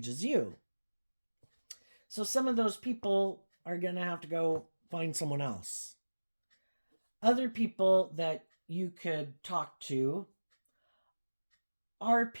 as you. So some of those people are going to have to go find someone else. Other people that you could talk to are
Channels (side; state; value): both; inverted; correlation -1.00